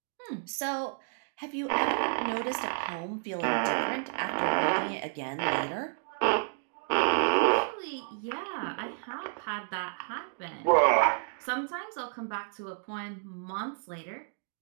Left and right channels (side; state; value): left; silent; 57 dB below the other